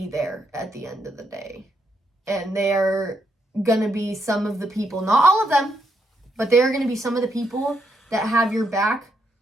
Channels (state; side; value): normal; both; correlation 0.78